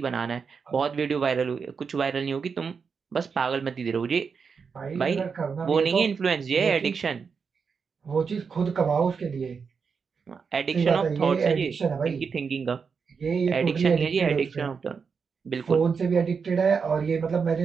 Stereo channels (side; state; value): left; quieter; 5.7 dB